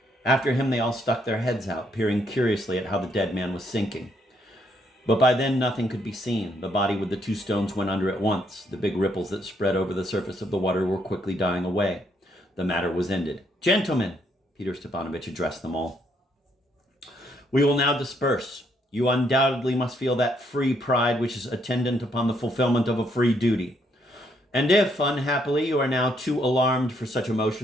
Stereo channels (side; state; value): both; normal; correlation 0.72